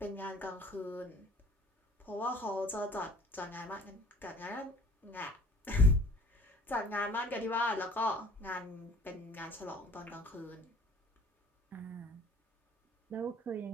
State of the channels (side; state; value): both; normal; correlation 0.49